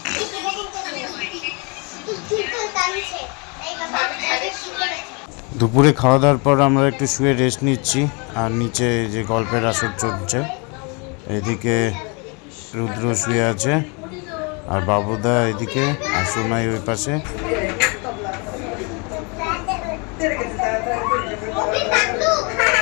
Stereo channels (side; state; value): right; quieter; 32.2 dB